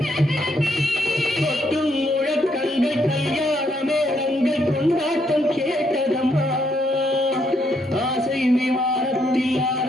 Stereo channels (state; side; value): normal; both; correlation 0.75